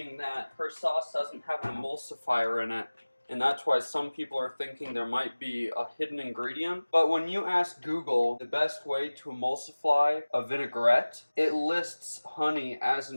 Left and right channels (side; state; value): both; inverted; correlation -1.00